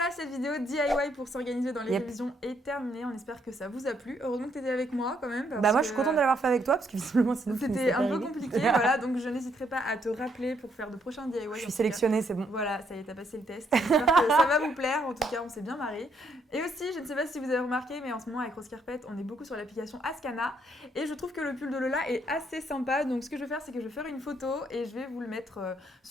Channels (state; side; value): normal; both; correlation 0.72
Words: cette vidéo DIY pour s'organiser dans les Yep. révisions est terminée. On espère que ça vous a plu. Heureusement que tu étais avec moi quand même. Bah moi, je suis contente de l'avoir fait avec toi, parce que visiblement, sinon... C'était un peu compliqué, voilà. Donc je n'hésiterai pas à te rappeler pour faire de prochains DIY. Je suis sélectionnée, c'est bon. Voilà, ça y est, t'as passé le test. J'espère que ça va vous plaire. En tout cas, on s'est bien marré. Et aussi, je ne sais pas si vous avez remarqué, mais en ce moment, avec Rose Carpette, on est beaucoup sur l'application Ascana. Et je trouve que le pull de Lola est assez sympa. Donc, ce que je vais faire, c'est que je vais faire une photo et je vais vous le mettre